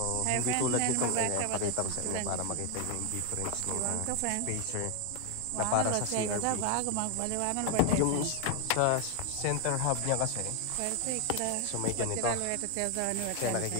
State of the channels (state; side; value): different; both; correlation 0.01